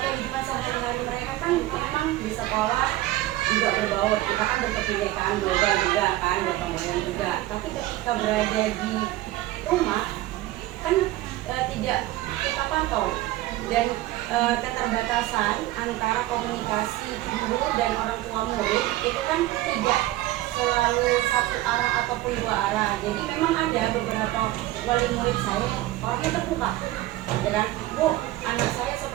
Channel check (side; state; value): left; quieter; 16.5 dB